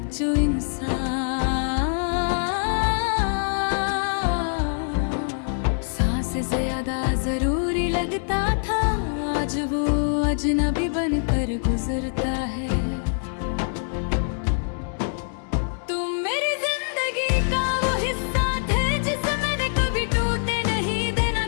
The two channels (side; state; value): right; silent; digital silence